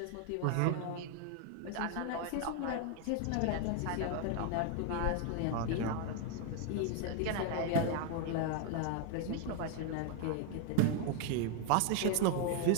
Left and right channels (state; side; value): different; both; correlation 0.00